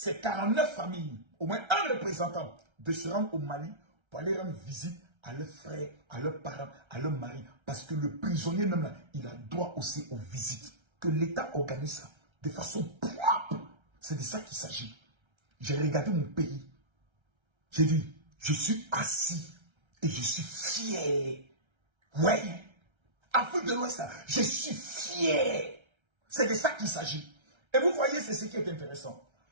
49 familles, au moins un représentant, de se rendre au Mali pour aller rendre visite à leurs frères, à leurs parents, à leurs maris. Parce que le prisonnier même là, il a droit aussi aux visites. Que l'État organise ça de façon propre. C'est de ça qu'il s'agit. J'ai regardé mon pays. J'ai dit, je suis assis et je suis fier. Oui. Afrique de l'Ouest, je suis fier. C'est de ça qu'il s'agit. Et vous voyez, c'est ce qui est intéressant.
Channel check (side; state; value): left; late; 1.3 ms